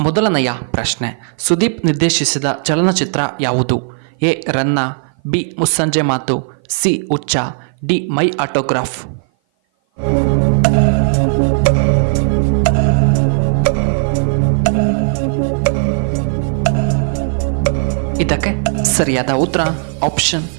ಮೊದಲನೆಯ ಪ್ರಶ್ನೆ, ಸುದೀಪ್ ನಿರ್ದೇಶಿಸಿದ ಚಲನಚಿತ್ರ ಯಾವುದು? ಎ ರನ್ನ, ಬಿ ಮುಸ್ಸಂಜೆ ಮಾತು, ಸಿ ಹುಚ್ಚ, ಡಿ ಮೈ ಆಟೋಗ್ರಾಫ್. ಇದಕ್ಕೆ ಸರಿಯಾದ ಉತ್ತರ ಆಪ್ಷನ್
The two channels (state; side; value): silent; left; 57 dB below the other